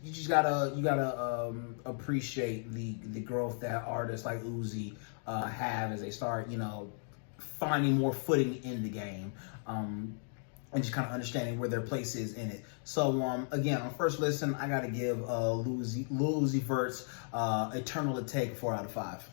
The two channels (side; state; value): right; silent; digital silence